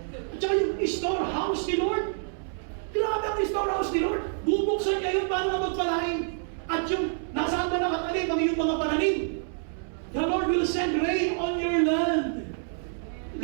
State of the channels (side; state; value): left; silent; 60 dB below the other